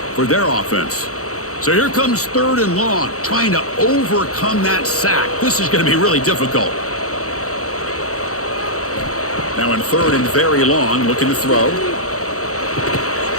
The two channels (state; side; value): late; right; 0.65 ms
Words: for their offense. So here comes 3rd and long, trying to overcome that sack. This is going to be really difficult. Now in 3rd and very long, looking to throw.